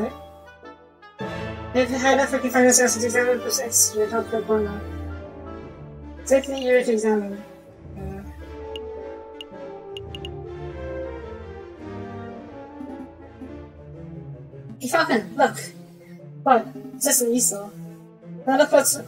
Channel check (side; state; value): both; identical; correlation 1.00